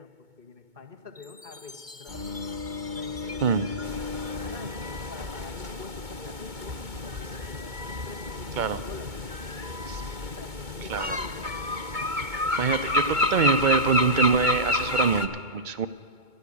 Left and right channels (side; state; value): left; late; 2.2 ms